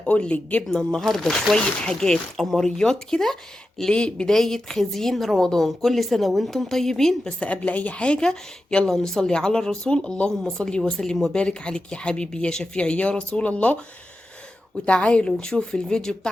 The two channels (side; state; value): both; normal; correlation 0.91